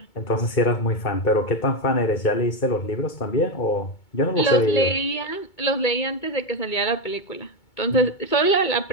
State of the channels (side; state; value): right; late; 2.2 ms